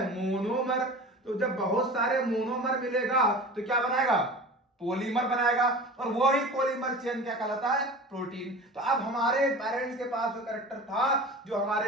मोनोमर। तो जब बहुत सारे मोनोमर मिलेगा तो क्या बनाएगा, पॉलीमर बनाएगा। और वही पॉलीमर चेन क्या कहलाता है, प्रोटीन। तो अब हमारे पेरेंट्स के पास जो कैरेक्टर था जो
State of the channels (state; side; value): normal; both; correlation 0.36